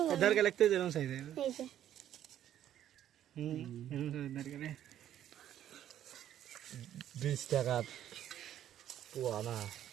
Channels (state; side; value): quieter; left; 11.2 dB